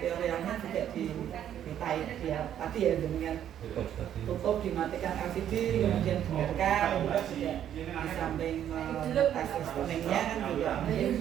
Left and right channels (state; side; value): quieter; left; 10.3 dB